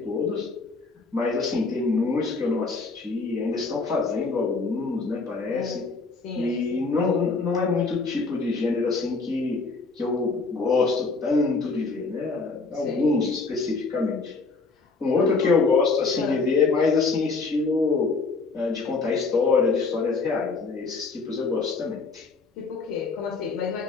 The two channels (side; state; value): right; quieter; 4.1 dB